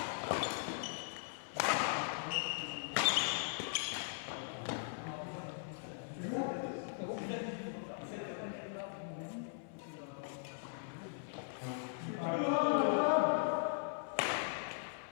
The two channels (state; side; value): silent; right; 51 dB below the other